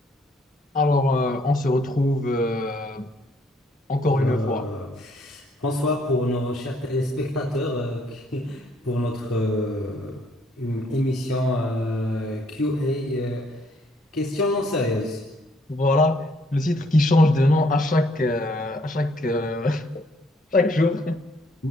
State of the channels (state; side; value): normal; both; correlation 0.67